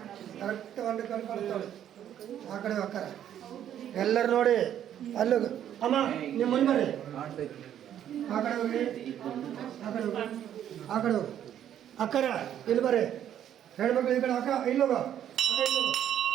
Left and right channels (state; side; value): quieter; left; 10.4 dB